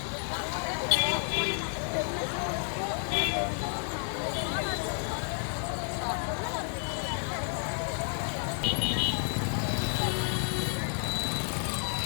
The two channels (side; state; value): right; silent; 57 dB below the other